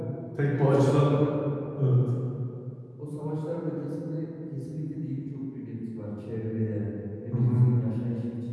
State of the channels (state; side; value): identical; both; correlation 1.00